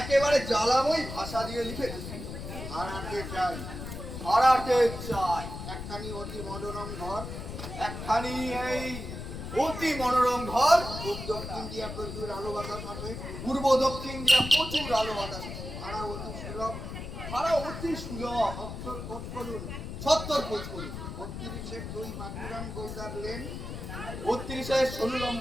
জ্বালাময়ী ভাষা দিয়ে লিখেছি। ভাড়াতে চাই, ভাড়াতে চাই একখানি অতি মনোরম ঘর, একখানি এই অতি মনোরম ঘর। পূর্ব দক্ষিণ দিয়া প্রচুর আলো বাতাস আছে, পূর্ব দক্ষিণ দিয়া প্রচুর আলো বাতাস। ভাড়া অতি সুলভ, ভাড়া অতি সুলভ। সত্তর খোঁজ করুন, 70 খোঁজ করুন। 32 2 বাঁকুড়ান গোলদার লেন, 32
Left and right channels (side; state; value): left; noise; rumble, 8 dB below the sound